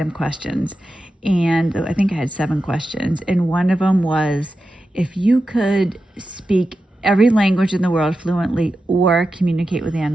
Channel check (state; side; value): normal; both; correlation 0.91